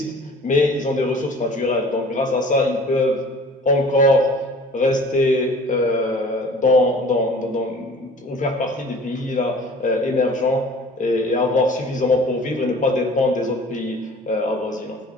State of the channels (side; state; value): both; normal; correlation 0.46